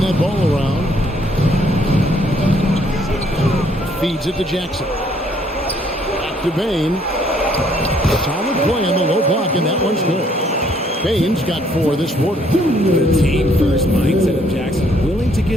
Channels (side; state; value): both; normal; correlation 0.66